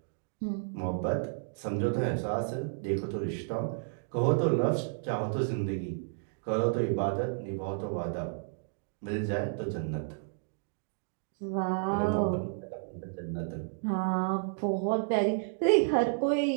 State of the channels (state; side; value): silent; left; digital silence